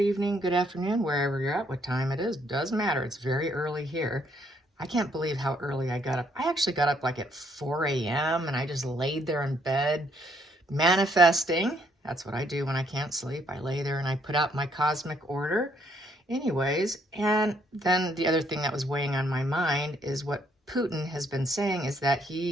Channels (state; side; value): normal; both; correlation 0.69